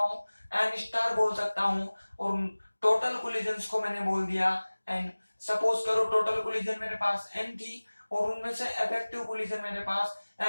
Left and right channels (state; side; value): inverted; both; correlation -1.00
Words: एन स्टार बोल सकता हूँ। और टोटल कोलिजन्स को मैंने बोल दिया एन। सपोज करो टोटल कोलिजन मेरे पास एन थी और उनमें से इफेक्टिव कोलिजन मेरे पास